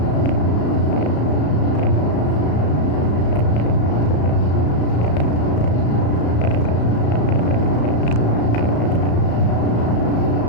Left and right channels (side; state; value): right; late; 34 ms